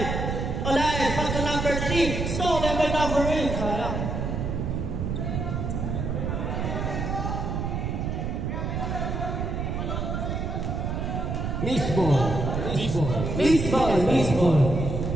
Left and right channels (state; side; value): noise; right; rumble, 2 dB below the sound